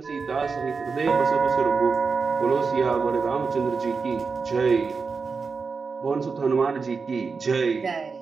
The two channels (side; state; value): left; quieter; 4.9 dB